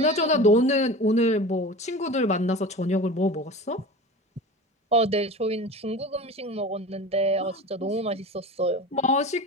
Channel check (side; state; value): both; normal; correlation 0.34